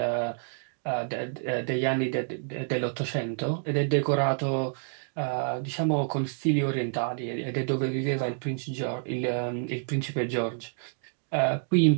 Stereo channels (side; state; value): left; silent; digital silence